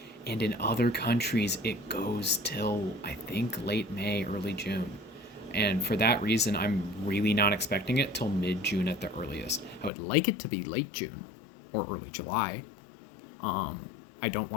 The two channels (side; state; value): right; drops out; at 9.9 s